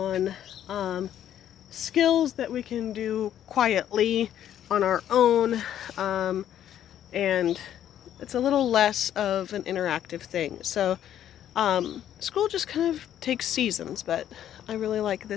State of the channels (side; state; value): right; quieter; 10.8 dB